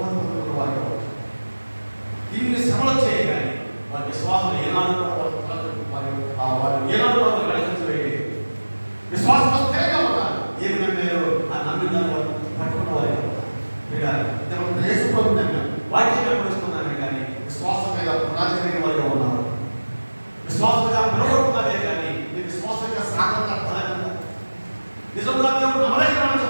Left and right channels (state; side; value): inverted; both; correlation -1.00